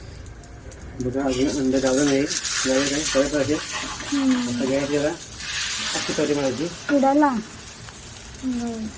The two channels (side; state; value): both; identical; correlation 1.00